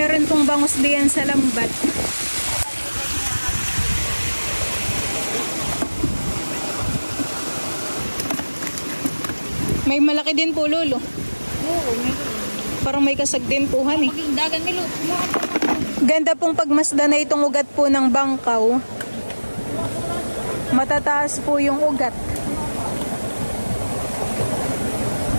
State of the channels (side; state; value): both; inverted; correlation -1.00